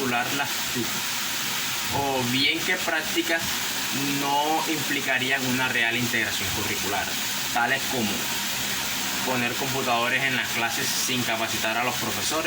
las TIC, o bien que prácticas no implicarían una real integración curricular, tales como poner computadores en las clases sin capacitar a los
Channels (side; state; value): both; identical; correlation 1.00